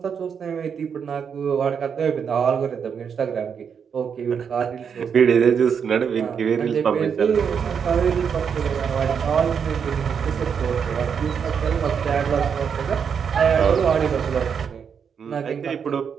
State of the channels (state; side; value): quieter; left; 7.0 dB